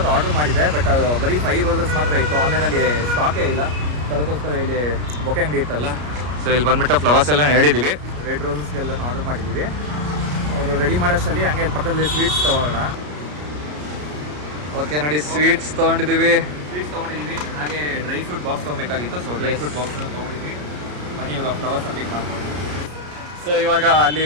ಆರ್ಡರ್ ಮಾಡಿದ್ದೆ, ಬಟ್ ಅದು ಬರೀ 5 ರೋಸಸ್ ಮಾತ್ರ ಇತ್ತು. ಆನ್ಲೈನಲ್ಲಿ ಸ್ಟಾಕೇ ಇಲ್ಲ. ಅದಕ್ಕೋಸ್ಕರ ಇಲ್ಲಿ ಬೊಕ್ಕೆ ಅಂಗಡಿ ಇತ್ತಲ್ಲ, ಸೊ ಇಲ್ಲಿ ಬಂದುಬಿಟ್ಟು ಫ್ಲವರ್ಸ್ ಎಲ್ಲ ಹೇಳಿದ್ದೀವಿ. ರೆಡ್ ರೋಸಸ್ಗೆಲ್ಲ ಆರ್ಡರ್ ಮಾಡಿದ್ದೀವಿ. ಅವರು ರೆಡಿ ಮಾಡೋಷ್ಟರಲ್ಲಿ ಹಂಗೆ ಇಲ್ಲಿ ಪಕ್ಕದಲ್ಲಿ ಸ್ವೀಟ್ಸ್ ತೊಗೊಳ್ಳೋಣ. ಓಕೆ ನೋಡಿ, ಸ್ವೀಟ್ಸ್ ತೊಗೊಂಡಿದ್ದೀವಿ. ಹಾಗೆ ಡ್ರೈ ಫ್ರೂಟ್ ಬಾಕ್ಸ್ ತೊಗೊಬೇಕಾಗಿತ್ತು, ಸೊ ಡ್ರೈ ಫ್ರೂಟ್ ಬಾಕ್ಸ್ನ ತೊಗೊಂಡಿದ್ದೀವಿ. ಬನ್ನಿ ಇವಾಗ ಫ್ಲವರ್ಸ್ನ ಪಿಕ್ ಮಾಡ್ಕೊಂಡು. ಸೊ ಇವಾಗ ಅಲ್ಲಿ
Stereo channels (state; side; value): late; left; 33 ms